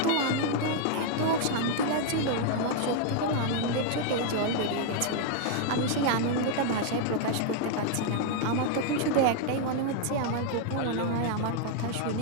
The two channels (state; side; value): different; both; correlation 0.00